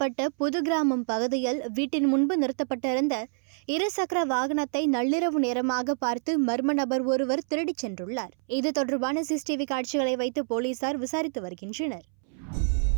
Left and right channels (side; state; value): left; silent; 60 dB below the other